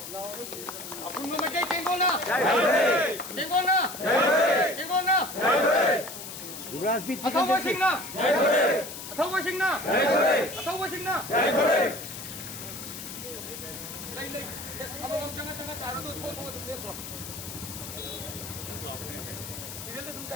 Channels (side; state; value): left; noise; hiss, 10 dB below the sound